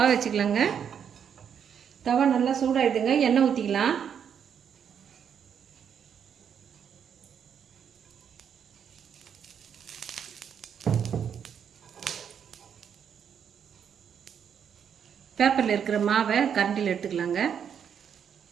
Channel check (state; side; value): quieter; left; 7.9 dB